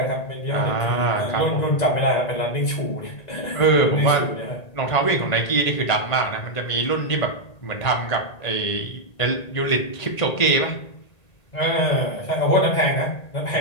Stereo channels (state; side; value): late; right; 1.9 ms